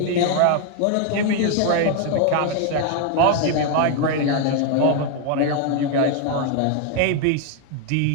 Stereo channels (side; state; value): both; different; correlation 0.00